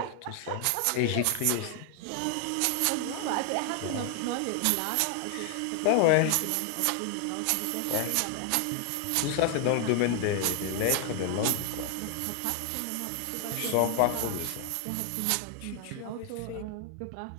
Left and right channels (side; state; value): both; different; correlation 0.00